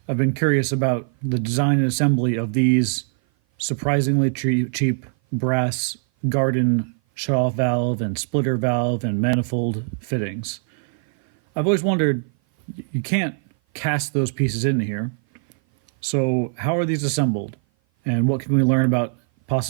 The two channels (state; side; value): silent; left; 57 dB below the other